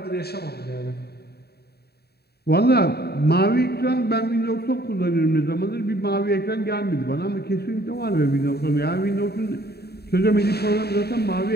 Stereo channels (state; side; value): late; right; 0.47 ms